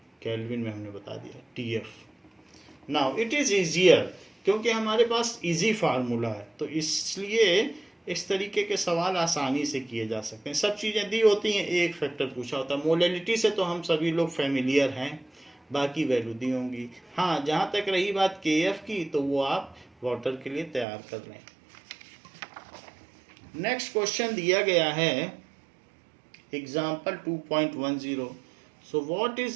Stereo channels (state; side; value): drops out; left; at 20.9 s